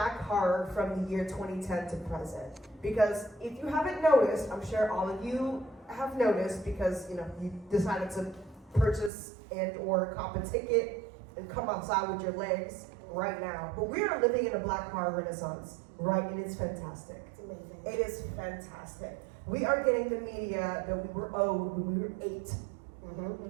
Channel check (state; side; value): drops out; left; at 9.1 s